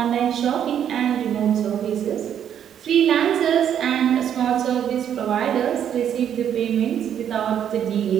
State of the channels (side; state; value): left; quieter; 9.3 dB